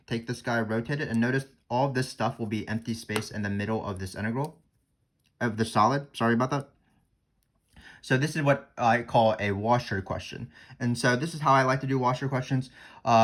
take this guy, rotate it, and notice all of this stuff will be empty space in the middle of this integral, of the solid. Sorry about that. So this is what I call a washer question. And so this is how I like to do washer questions.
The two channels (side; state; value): both; identical; correlation 1.00